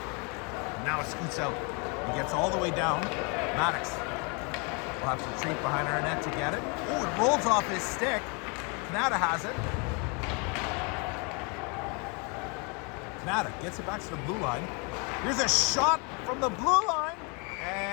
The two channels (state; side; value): quieter; right; 32.9 dB